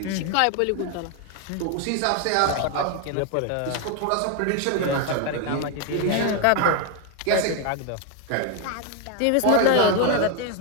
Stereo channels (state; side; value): different; both; correlation 0.01